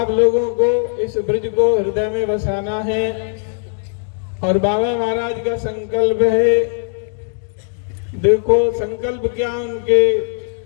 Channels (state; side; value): silent; right; digital silence